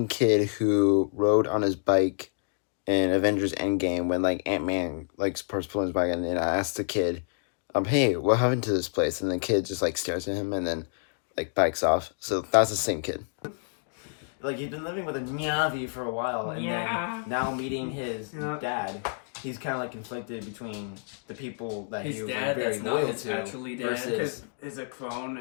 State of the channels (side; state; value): right; silent; digital silence